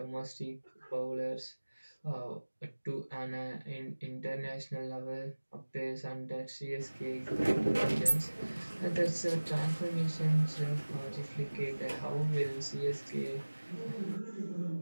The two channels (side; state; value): both; inverted; correlation -1.00